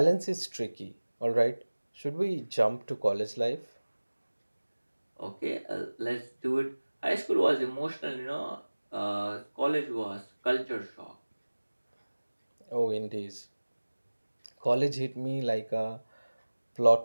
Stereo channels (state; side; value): inverted; both; correlation -1.00